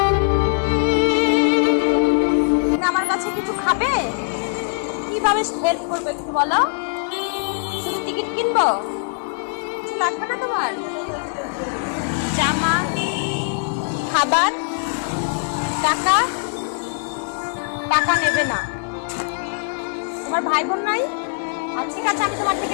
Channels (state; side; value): silent; right; digital silence